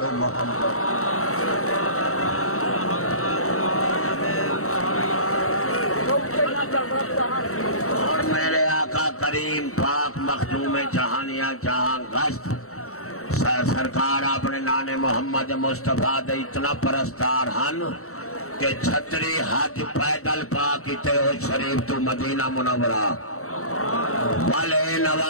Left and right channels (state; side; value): late; right; 0.64 ms